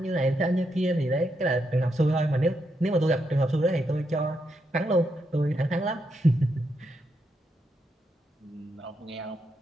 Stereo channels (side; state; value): both; normal; correlation 0.81